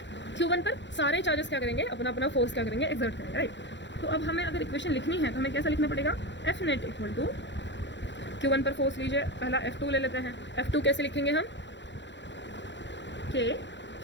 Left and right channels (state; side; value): late; right; 0.52 ms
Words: Q1 पर सारे चार्जेस क्या करेंगे, अपना अपना फोर्स क्या करेंगे, एक्सर्ट करेंगे, राइट. तो अब हमें अगर इक्वेशन लिखनी है तो हमें कैसा लिखना पड़ेगा, F net equal to Q1 पर फोर्स लीजिए, पहला F2 ले लेते हैं. F2 कैसे लिखेंगे हम, K